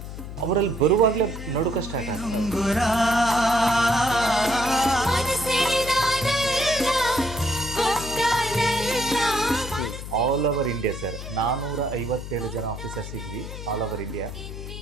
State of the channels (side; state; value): left; noise; hum, 10 dB below the sound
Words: ಅವರಲ್ಲಿ ಬರುವಾಗಲೇ ನಡುಕ ಸ್ಟಾರ್ಟ್ ಆಗ್ತದೆ. ಆಲ್ ಓವರ್ ಇಂಡಿಯಾ ಸರ್ 457 ಜನ ಆಫೀಸರ್ಸ್ ಇದ್ವಿ ಆಲ್ ಓವರ್ ಇಂಡಿಯಾ.